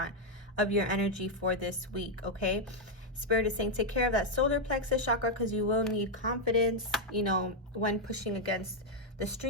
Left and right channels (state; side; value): normal; both; correlation 0.00